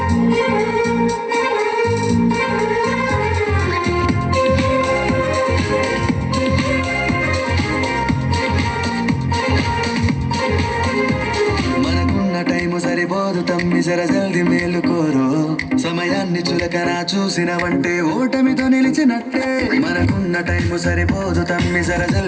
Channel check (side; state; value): both; identical; correlation 1.00